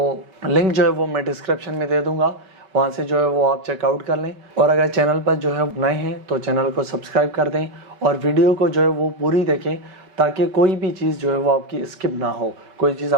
लिंक जो है वो मैं डिस्क्रिप्शन में दे दूँगा, वहाँ से जो है वो आप चेकआउट कर लें। और अगर चैनल पर जो है नए हैं तो चैनल को सब्सक्राइब कर दें और वीडियो को जो है वो पूरी देखें ताकि कोई भी चीज़ जो है वो आपकी स्किप ना हो, कोई चीज़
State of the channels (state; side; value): late; left; 5.2 ms